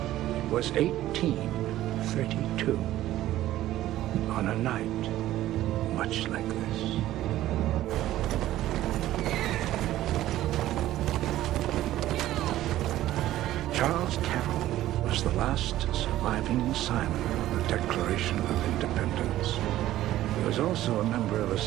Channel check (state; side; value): quieter; left; 14.3 dB